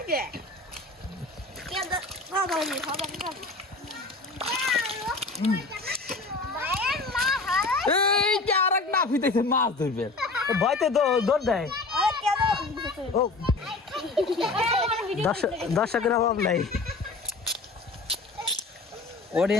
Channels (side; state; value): right; quieter; 3.5 dB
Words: কে এই যে আর এক না ফিতেছে মাছ ধরবে, ভয়তে দৌড় দেয়। ও দর্শকের অভাব নাই।